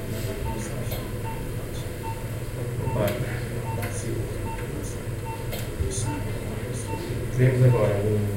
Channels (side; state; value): both; identical; correlation 1.00